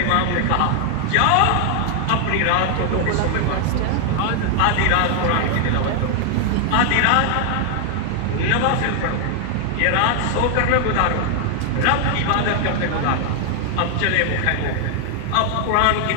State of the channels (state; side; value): different; both; correlation 0.00